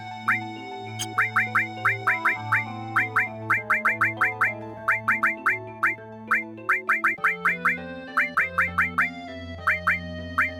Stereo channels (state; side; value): identical; both; correlation 1.00